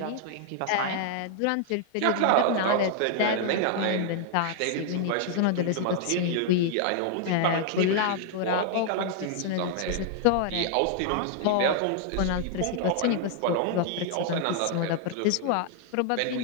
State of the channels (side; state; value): both; different; correlation 0.00